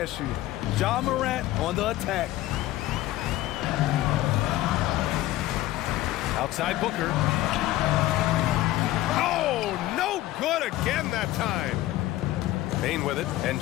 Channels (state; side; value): quieter; right; 15.7 dB